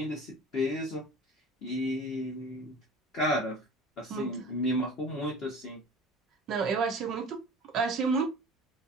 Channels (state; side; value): normal; both; correlation 0.41